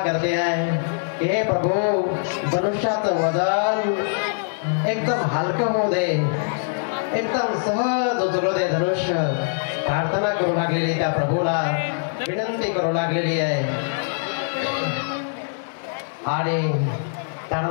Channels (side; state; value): right; silent; digital silence